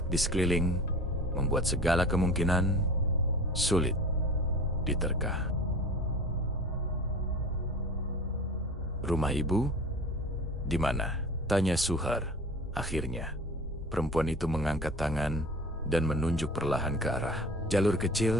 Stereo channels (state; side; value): normal; both; correlation 0.39